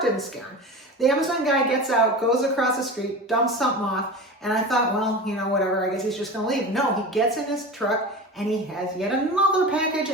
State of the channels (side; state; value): both; normal; correlation 0.30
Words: didn't scare him. The Amazon guy gets out, goes across the street, dumps something off, and I thought, well, whatever, I guess he's just gonna leave. No, he gets in his truck and he has yet another package